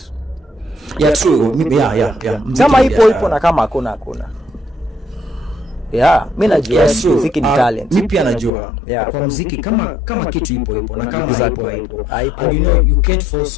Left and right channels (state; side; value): drops out; right; at 8.5 s